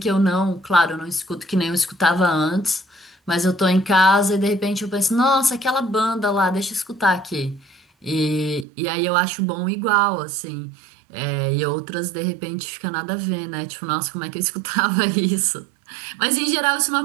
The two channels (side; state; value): left; drops out; at 8.7 s